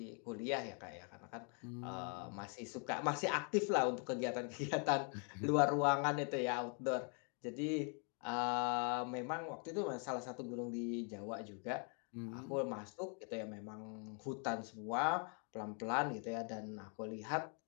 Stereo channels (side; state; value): right; quieter; 39.8 dB